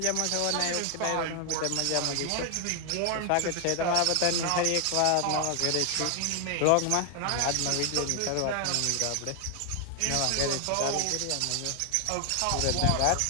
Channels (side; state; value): both; different; correlation 0.00